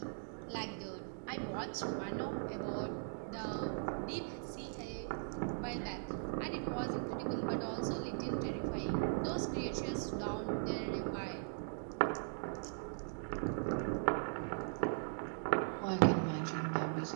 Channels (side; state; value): left; silent; digital silence